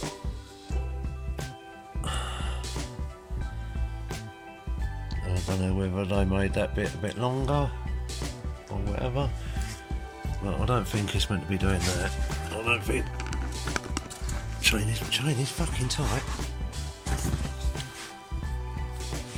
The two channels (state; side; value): identical; both; correlation 1.00